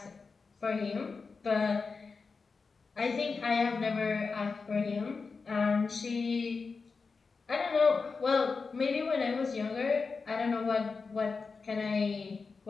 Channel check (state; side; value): quieter; right; 4.6 dB